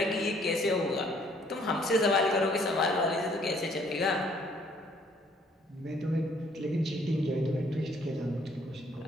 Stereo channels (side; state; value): both; normal; correlation 0.63